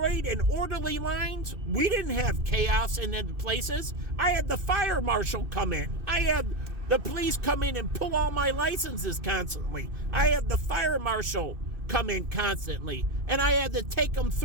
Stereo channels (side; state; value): left; late; 2.6 ms